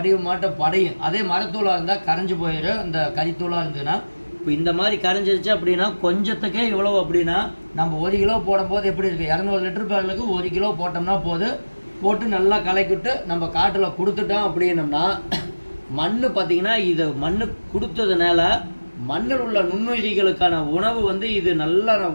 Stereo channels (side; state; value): both; inverted; correlation -1.00